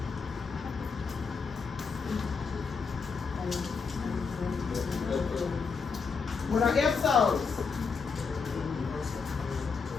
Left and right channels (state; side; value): quieter; right; 5.2 dB